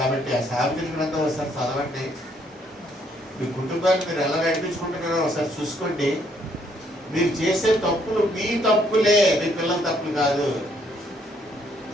ఆ సామెతల గ్రంథం ఒకసారి చదవండి. మీ కుటుంబాన్ని మీరు ఎలా నడిపించుకుంటున్నారో ఒకసారి చూసుకోండి. మీరు చేసే తప్పులు మీ తప్పులే, మీ పిల్లల తప్పులు కాదు.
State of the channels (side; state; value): both; normal; correlation 0.69